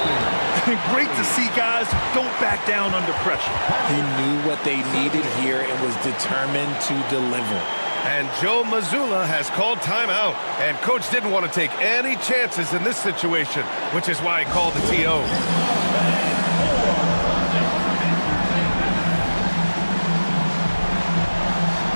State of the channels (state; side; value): inverted; both; correlation -1.00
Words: Great to see guys who don't back down under pressure. He knew what they needed here and was determined to deliver. And Joe Mazzulla has called timeout. And coach didn't want to take any chances in this situation, which is why he called the TO.